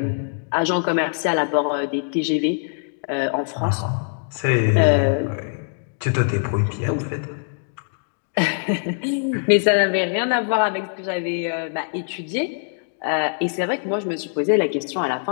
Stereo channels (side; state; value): right; silent; digital silence